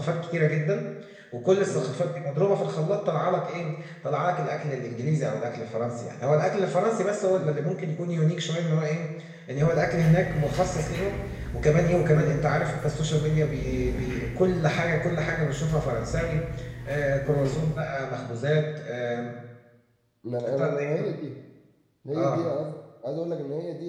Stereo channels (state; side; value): identical; both; correlation 1.00